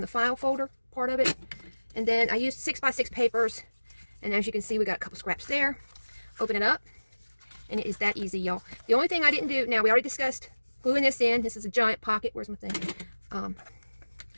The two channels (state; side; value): inverted; both; correlation -1.00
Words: the file folder part of it. And then I used 6x6 papers. And as you can see, we got a couple scraps there. Open it up. And it is that easy, y'all. The only thing I didn't do, now we already discussed gluing this in. This is a giant pocket. Where's my thing?